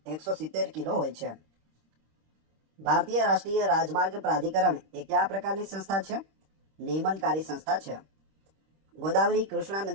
170 કિલો હોય છે. ભારતીય રાષ્ટ્રીય રાજમાર્ગ પ્રાધિકરણ એ કયા પ્રકારની સંસ્થા છે? નિયમનકારી સંસ્થા છે. ગોદાવરી કૃષ્ણા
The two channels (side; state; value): left; late; 26 ms